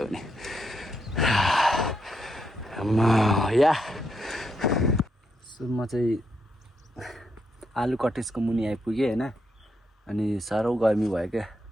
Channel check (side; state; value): both; normal; correlation 0.80